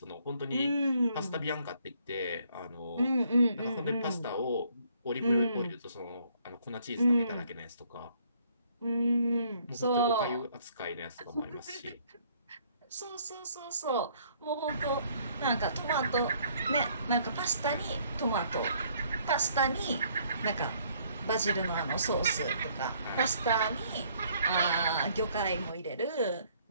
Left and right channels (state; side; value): inverted; both; correlation -0.64